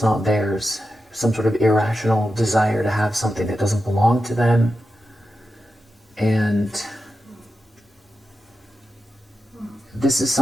not theirs, some sort of irrational desire to have something that doesn't belong to them. And this is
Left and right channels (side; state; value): both; normal; correlation 0.90